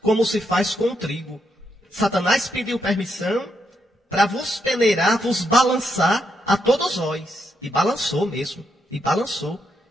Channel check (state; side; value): normal; both; correlation 0.80